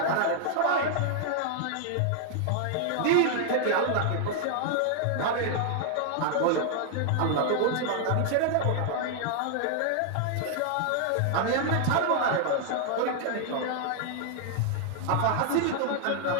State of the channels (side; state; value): both; different; correlation 0.00